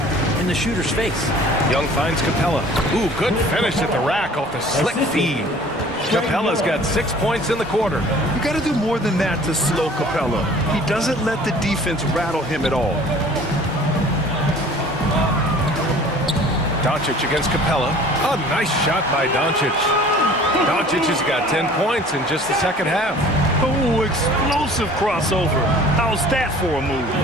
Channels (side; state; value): both; normal; correlation 0.48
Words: in the shooter's face. Young finds Capella. Ooh, good finish at the rack off the slick feed. Capella's got 6 points in the quarter. You got to do more than that to slow Capella. He doesn't let the defense rattle him at all. Doncic against Capella. A nice shot by Doncic. Doncic has got 10 points in just the second half. Oh, explosive crossover. How's that for a move?